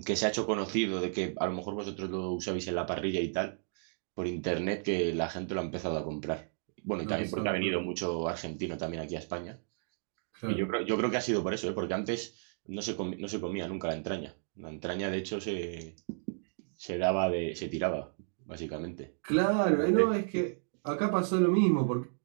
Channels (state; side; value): silent; left; digital silence